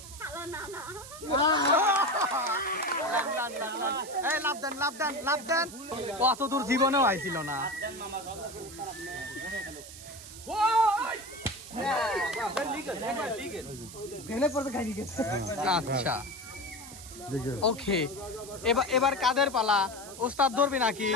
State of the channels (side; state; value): right; noise; hiss, 15 dB below the sound